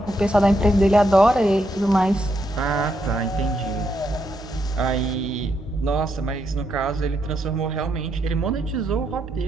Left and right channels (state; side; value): normal; both; correlation 0.79